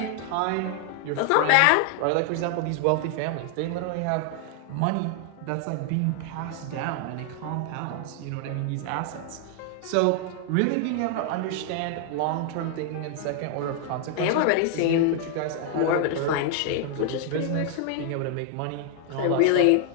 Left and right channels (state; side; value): different; both; correlation 0.00